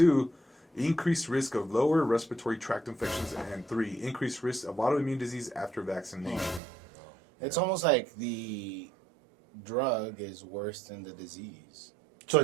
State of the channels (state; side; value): drops out; left; at 6.6 s